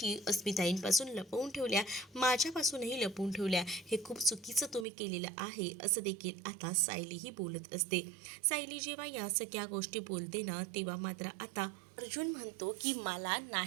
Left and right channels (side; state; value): left; drops out; at 4.9 s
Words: अस्मिताईंपासून लपवून ठेवल्या, माझ्यापासूनही लपवून ठेवल्या. हे खूप चुकीचं तुम्ही केलेलं आहे, असं देखील आता सायलीही बोलत असते. सायली जेव्हा या सगळ्या गोष्टी बोलते ना, तेव्हा मात्र आता अर्जुन म्हणतो की मला